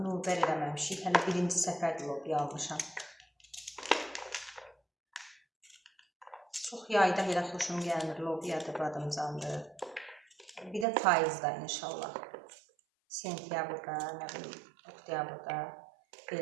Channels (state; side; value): drops out; left; at 10.9 s